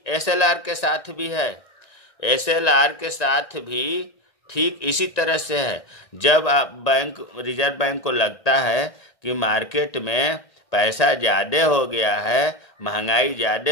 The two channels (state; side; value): late; right; 1.9 ms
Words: SLR के साथ भी है। SLR के साथ भी ठीक इसी तरह से है। जब आप रिजर्व बैंक को लगता है कि मार्केट में पैसा ज़्यादा हो गया है, महंगाई